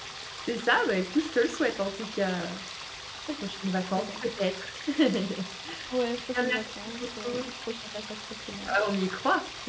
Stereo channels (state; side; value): identical; both; correlation 1.00